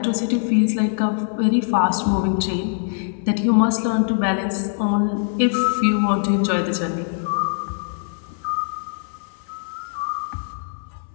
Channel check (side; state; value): right; silent; 64 dB below the other